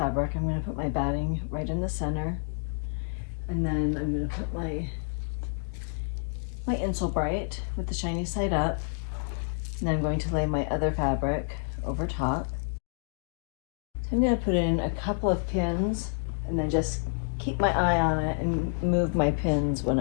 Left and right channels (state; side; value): silent; right; digital silence